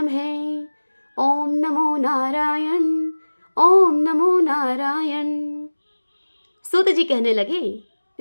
ओम नमो नारायण, ओम नमो नारायण। सूत जी कहने लगे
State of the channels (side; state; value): both; inverted; correlation -1.00